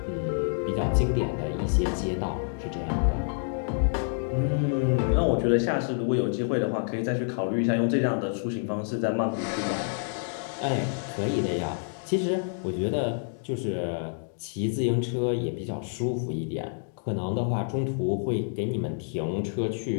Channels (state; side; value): silent; right; digital silence